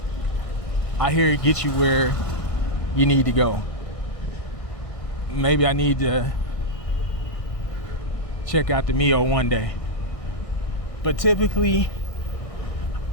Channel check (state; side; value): late; right; 1.6 ms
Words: I hear it gets you where you need to go. Maybe I need to check out the Mio one day. But typically,